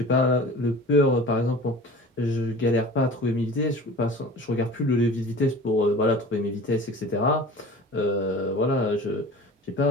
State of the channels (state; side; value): normal; both; correlation 0.40